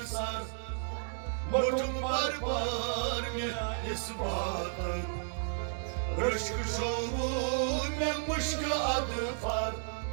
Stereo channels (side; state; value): left; silent; digital silence